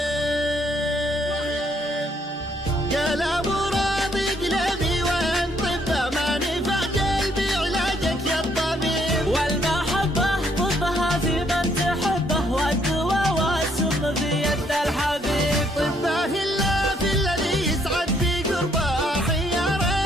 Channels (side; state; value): both; normal; correlation 0.69